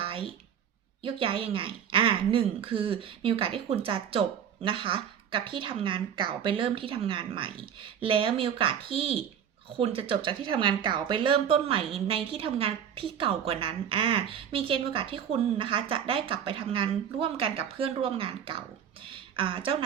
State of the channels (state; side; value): quieter; left; 8.7 dB